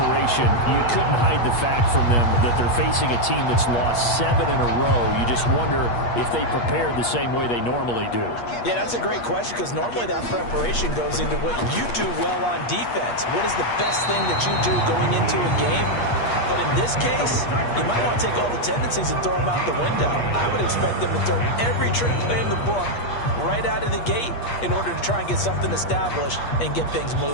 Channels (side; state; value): right; late; 8.4 ms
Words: you couldn't hide the fact from them that they're facing a team that's lost 7 in a row. You just wonder if they prepared the same way they normally do. Yeah, that's a great question because normally that preparation goes into what you do well on defense. What is the best thing that you do going into a game? But in this case, you might want to take all the tendencies and throw them out the window. I would expect them to throw every trick play in the book right out of the gate in order to try and get something established and get things